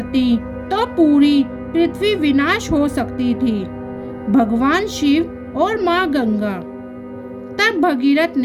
तो पूरी पृथ्वी विनाश हो सकती थी। भगवान शिव और माँ गंगा। तब भगीरथ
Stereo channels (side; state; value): both; identical; correlation 1.00